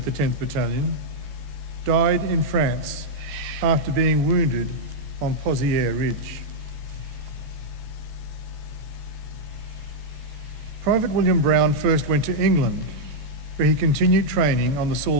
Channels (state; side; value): late; left; 14 ms